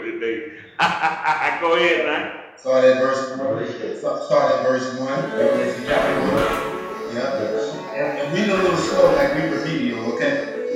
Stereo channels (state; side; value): identical; both; correlation 1.00